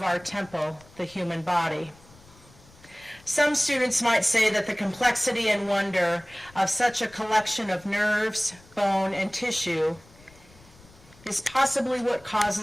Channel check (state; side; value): noise; left; rumble, 25 dB below the sound